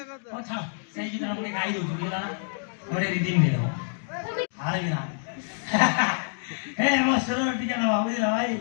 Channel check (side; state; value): right; silent; digital silence